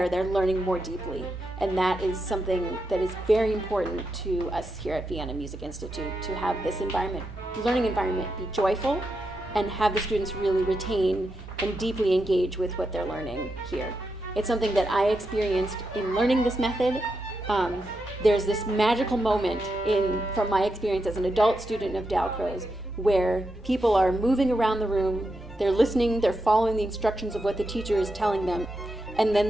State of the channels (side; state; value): both; normal; correlation 0.85